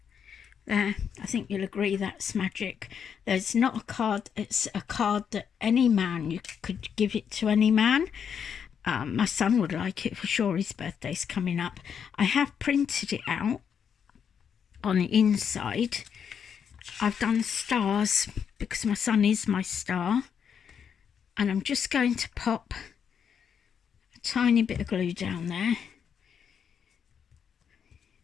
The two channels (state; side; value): quieter; right; 7.5 dB